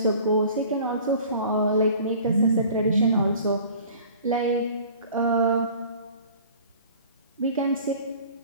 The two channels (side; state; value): both; inverted; correlation -0.47